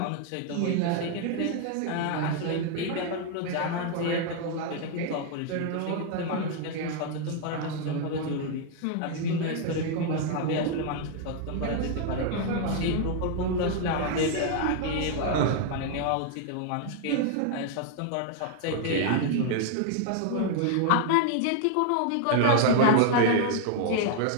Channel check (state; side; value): different; both; correlation 0.00